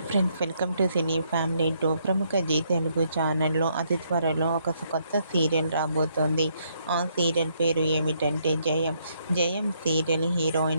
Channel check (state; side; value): inverted; both; correlation -0.73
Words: friends, welcome to cine family 2. ప్రముఖ G Telugu ఛానల్లో అతి త్వరలో ఒక కొత్త సీరియల్ రాబోతోంది. ఆ సీరియల్ పేరు ఏమిటంటే జయం. జయం సీరియల్